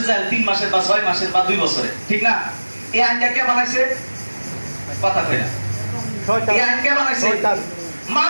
জেল? 3 মাসের বা 6 মাসের বা 2 বছরের, ঠিক না? এই আইনটা কে বানাইছে? কথা কই না। শয়তান। এই আইন কে বানাইছে? শয়তান।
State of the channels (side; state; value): both; inverted; correlation -1.00